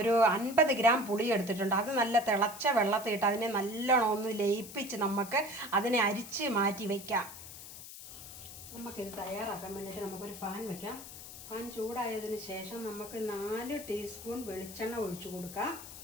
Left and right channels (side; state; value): left; noise; hiss, 13 dB below the sound